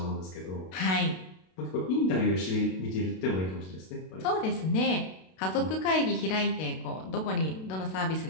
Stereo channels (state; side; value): late; right; 32 ms